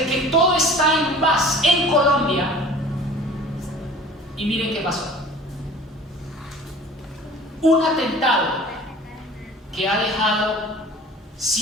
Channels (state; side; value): normal; both; correlation 0.45